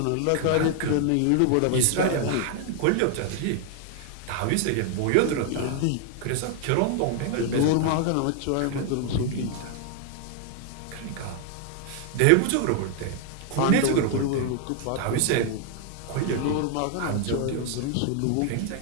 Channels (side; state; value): both; different; correlation 0.00